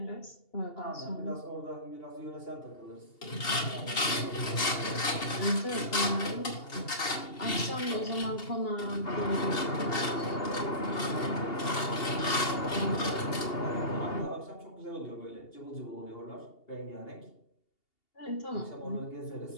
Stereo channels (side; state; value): right; late; 2.8 ms